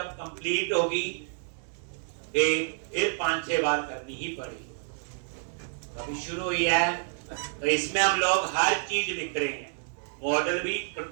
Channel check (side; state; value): left; silent; 56 dB below the other